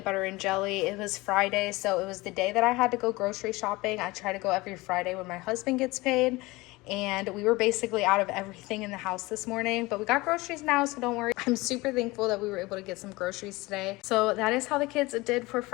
butter and jelly. It was Friday, so it was the day that I had to go grocery shopping. I try to go every Friday when my husband gets paid. And we were basically out of everything in the house this morning, but we got groceries now, so don't worry. I'm super thankful that we were able to get some groceries today. So that is how the kids did for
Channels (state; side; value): quieter; right; 21.8 dB